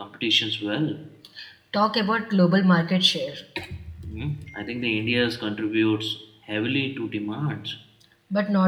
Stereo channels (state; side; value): identical; both; correlation 1.00